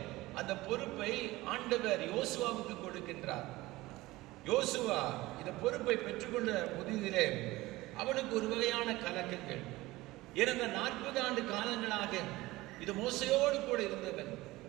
அந்த பொறுப்பை ஆண்டவர் யோசுவாவுக்கு கொடுக்கின்றார். யோசுவா இந்த பொறுப்பை பெற்றுக்கொண்ட புதிதிலே அவனுக்கு ஒரு வகையான கலக்கங்கள். இறந்த 40 ஆண்டு காலங்களாக இது மோசையோடு கூட இருந்தவன்.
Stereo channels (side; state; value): left; quieter; 19.1 dB